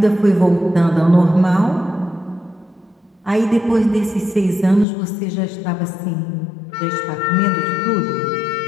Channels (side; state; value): right; drops out; at 4.9 s